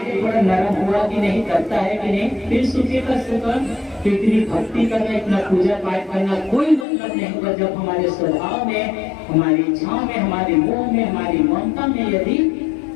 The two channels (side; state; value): right; drops out; at 6.9 s